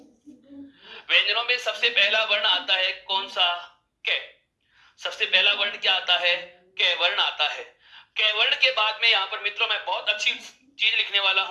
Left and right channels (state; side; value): identical; both; correlation 1.00